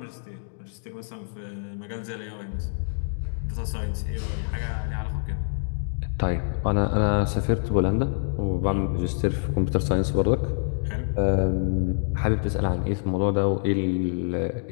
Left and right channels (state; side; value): silent; right; digital silence